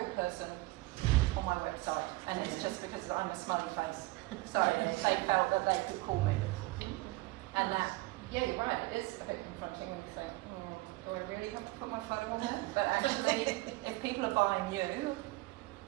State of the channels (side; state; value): left; quieter; 21.3 dB